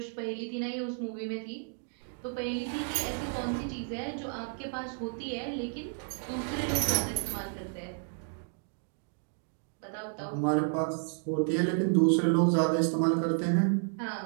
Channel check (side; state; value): left; silent; 57 dB below the other